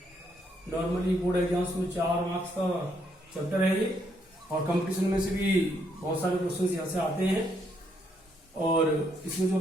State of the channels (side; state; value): both; normal; correlation 0.74